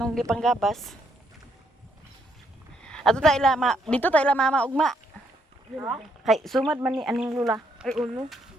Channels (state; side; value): normal; both; correlation 0.73